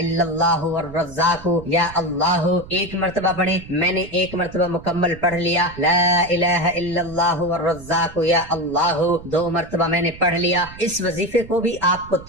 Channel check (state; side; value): noise; right; rumble, 17 dB below the sound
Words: اللہ والرزاق یا اللہ، 1 مرتبہ پڑھیں۔ میں نے 1 مرتبہ مکمل پڑھ لیا، لا الہ الا اللہ والرزاق یا اللہ، 2 مرتبہ میں نے پڑھ لیا۔ اس وظیفے کو بھی آپ کو